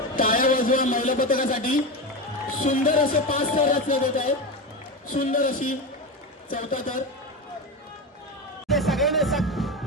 टाळ्या वाजवा महिला पथकासाठी. सुंदर असे 5 थर रचले जात आहेत. सुंदर अशी 4था थर. सगळ्यांनी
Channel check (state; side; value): normal; both; correlation 0.18